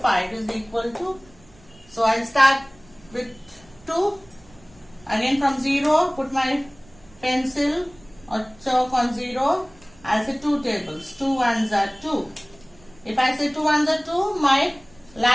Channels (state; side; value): noise; right; rumble, 26 dB below the sound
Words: is equal to. So I'll start with 2. Again from 0, put my pencil or chalk on 0. I'll say 2 tables. 2 ones are 2. If I say 2 ones are 2, my